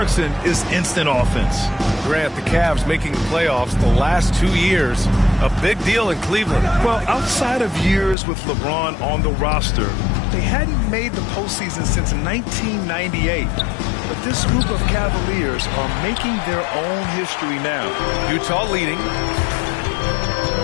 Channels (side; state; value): right; drops out; at 8.2 s